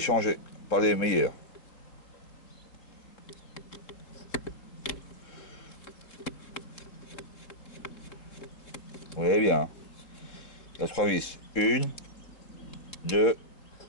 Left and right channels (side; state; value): right; late; 3.7 ms